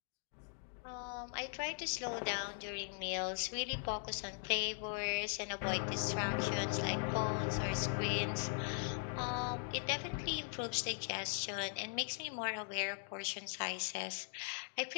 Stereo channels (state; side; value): silent; right; digital silence